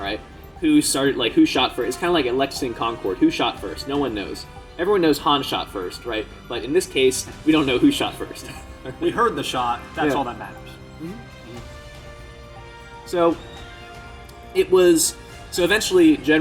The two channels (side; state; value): both; identical; correlation 1.00